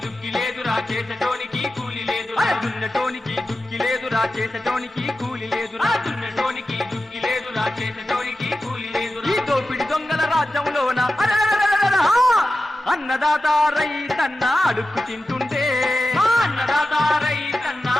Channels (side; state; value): both; normal; correlation 0.93